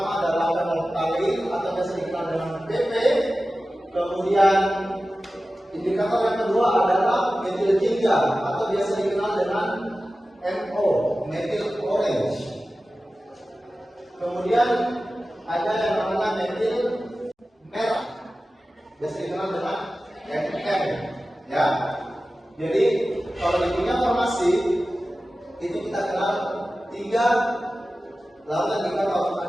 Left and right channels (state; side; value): normal; both; correlation 0.95